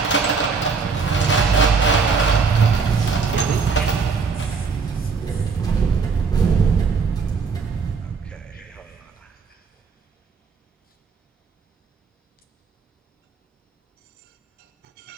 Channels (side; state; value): left; quieter; 5.1 dB